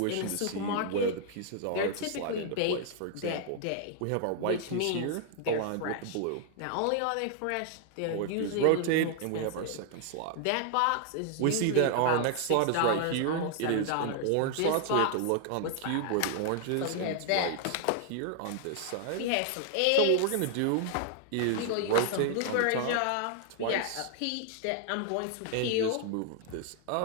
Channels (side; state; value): both; different; correlation 0.00